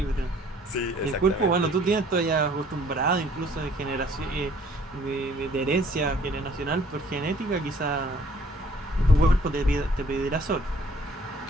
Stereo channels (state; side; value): normal; both; correlation 0.58